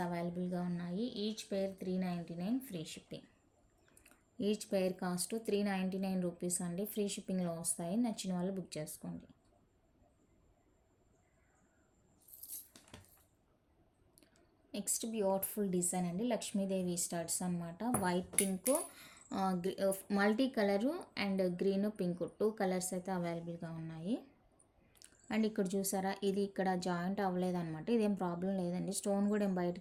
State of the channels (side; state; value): both; identical; correlation 1.00